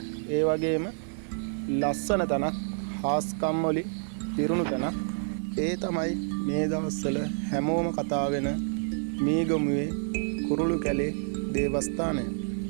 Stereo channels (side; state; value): left; silent; digital silence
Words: ඒ වගේම ලස්සන තැනක් හාස්කම් වලින් පිරුණු තැනක් ඒ තමයි මේ දවස්වල හැමෝම කතා වෙන මීගමුවේ කුරුළු කැලේ දේවස්ථානය.